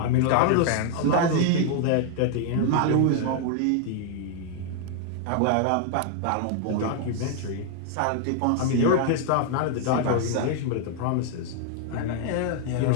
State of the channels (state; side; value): different; both; correlation 0.00